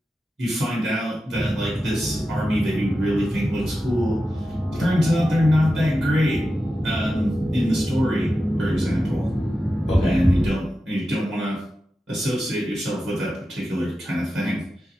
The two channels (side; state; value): both; normal; correlation 0.91